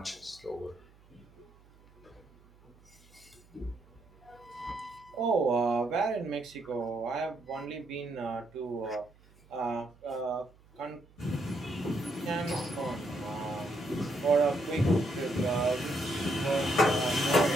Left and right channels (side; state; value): right; noise; hum, 27 dB below the sound